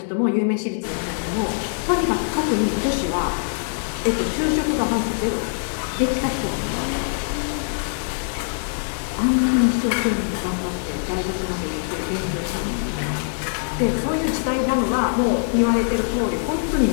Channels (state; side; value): silent; right; digital silence